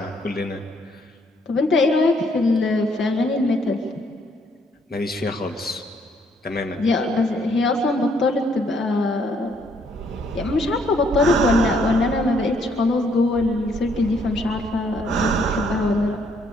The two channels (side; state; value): both; normal; correlation 0.68